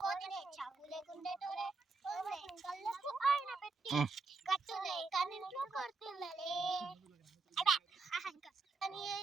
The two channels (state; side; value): quieter; left; 3.9 dB